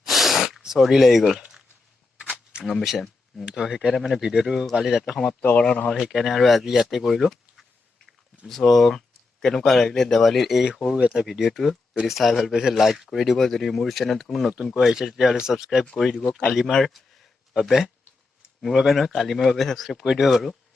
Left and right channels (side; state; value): right; quieter; 3.7 dB